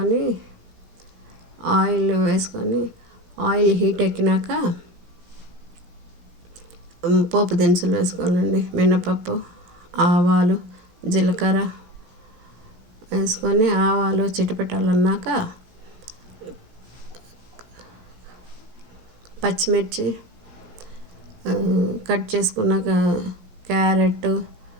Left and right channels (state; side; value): late; left; 17 ms